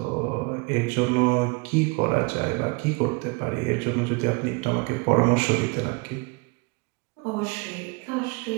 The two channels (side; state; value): left; quieter; 28.2 dB